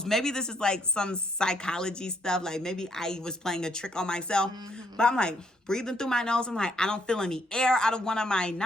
Maybe this is like some psychology stuff. Like maybe I was playing a trick on myself. But I'm like breathing through my nose. I'm like, I don't feel any air out of one of my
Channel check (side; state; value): both; normal; correlation 0.71